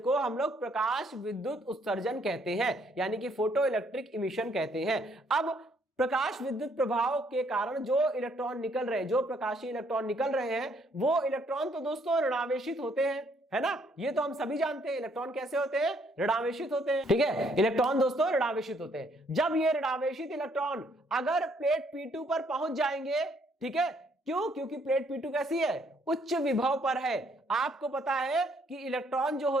हम लोग प्रकाश विद्युत उत्सर्जन कहते हैं, यानी कि फोटो इलेक्ट्रिक इमिशन कहते हैं। अब प्रकाश विद्युत प्रभाव के कारण जो इलेक्ट्रॉन निकल रहे हैं, जो प्रकाशीय इलेक्ट्रॉन निकल रहे हैं, वो इलेक्ट्रॉन तो दोस्तों ऋणावेशित होते हैं, है ना? ये तो हम सभी जानते हैं। इलेक्ट्रॉन कैसे होते हैं? ऋणावेशित होते हैं। ठीक है, इलेक्ट्रॉन दोस्तों ऋणावेशित होते हैं। जब ये ऋणावेशित इलेक्ट्रॉन अगर प्लेट P2 पर पहुंच जाएंगे, ठीक है, क्यों? क्योंकि प्लेट P2 कैसी है? उच्च विभव पर है। आपको पता है कि इलेक्ट्रॉन जो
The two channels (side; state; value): both; normal; correlation 0.68